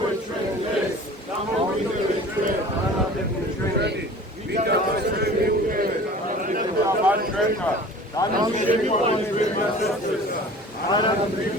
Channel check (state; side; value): normal; both; correlation 0.43